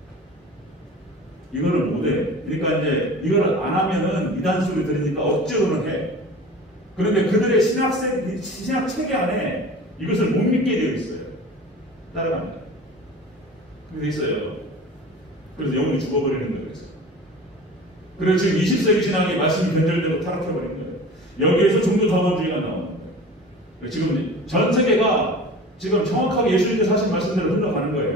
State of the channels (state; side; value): normal; both; correlation 0.39